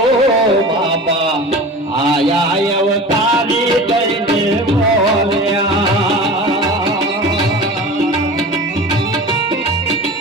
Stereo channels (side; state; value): both; normal; correlation 0.35